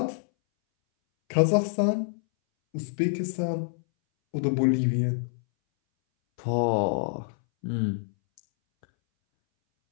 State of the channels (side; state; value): right; silent; 60 dB below the other